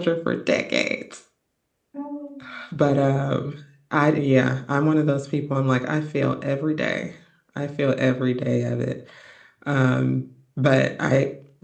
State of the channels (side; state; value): both; identical; correlation 1.00